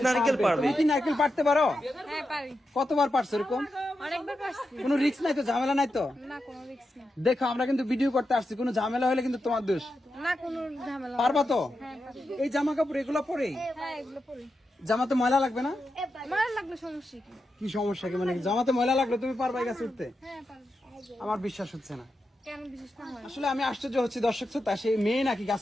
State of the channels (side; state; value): both; normal; correlation 0.88